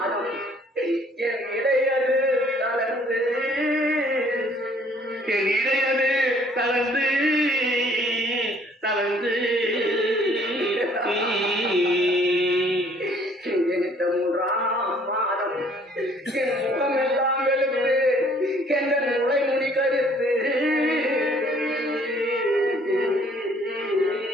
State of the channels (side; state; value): both; normal; correlation 0.59